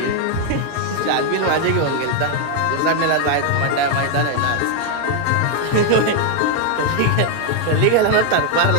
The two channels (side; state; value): both; different; correlation 0.00